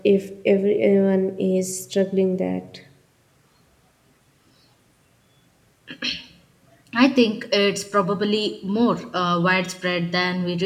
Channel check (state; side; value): identical; both; correlation 1.00